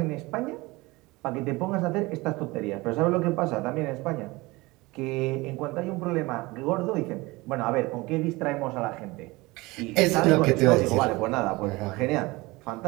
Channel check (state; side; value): quieter; left; 22.3 dB